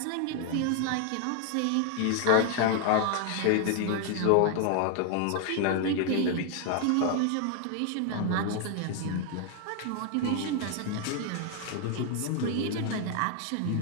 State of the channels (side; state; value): both; different; correlation 0.00